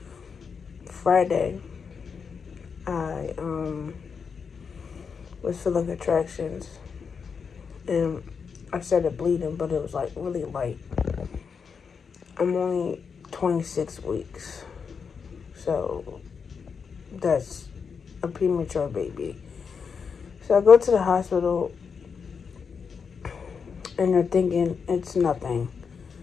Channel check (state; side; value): quieter; right; 6.0 dB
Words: Friday I was feeling contractions and I started bleeding, but it was like really light. I'm only 26 weeks, so that's a premature baby. So I go to the hospital and they're thinking it's nothing.